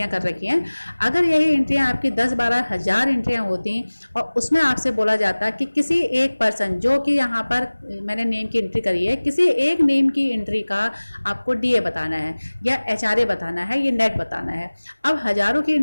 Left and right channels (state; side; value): inverted; both; correlation -1.00